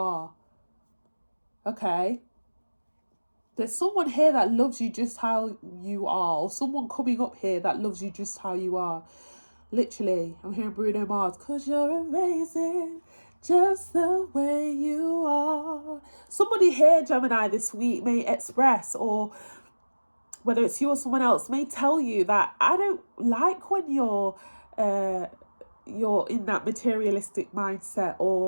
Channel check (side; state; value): both; inverted; correlation -1.00